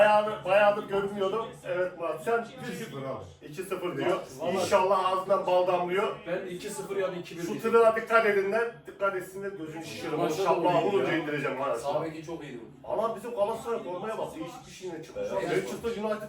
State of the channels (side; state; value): both; identical; correlation 1.00